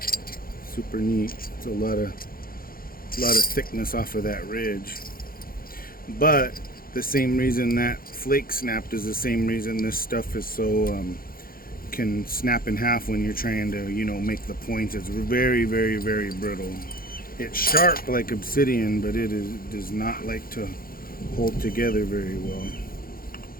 Super neat. It's a lot of thickness off of that ridge. But the same reason that flake snapped is the same reason this stuff is so can snap in half when you're trying to, you know, make the points. It's very, very, very brittle. It's sharp like obsidian, but it does not like to hold together very well.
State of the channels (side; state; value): right; late; 0.42 ms